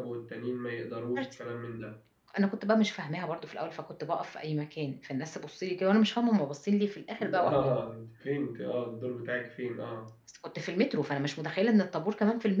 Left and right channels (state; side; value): identical; both; correlation 1.00